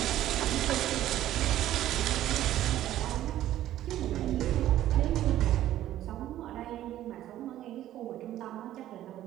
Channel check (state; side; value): quieter; left; 13.2 dB